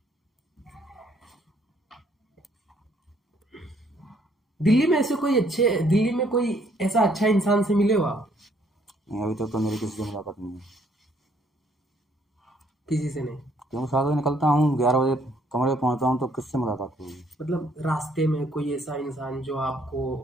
दिल्ली में कोई ऐसा अच्छा इंसान से मिले हो आप? नहीं, अभी तक तो मेरी किसी से मुलाकात नहीं है, किसी से नहीं? क्योंकि 7 बजे निकलता हूँ, 11 बजे कमरे पे पहुँचता हूँ, तो किससे मुलाकात होगी। मतलब रास्ते में कोई ऐसा इंसान जो आपको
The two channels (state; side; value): normal; both; correlation 0.66